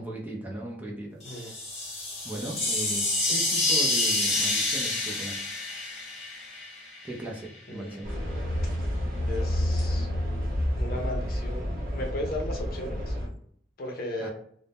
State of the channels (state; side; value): normal; both; correlation 0.48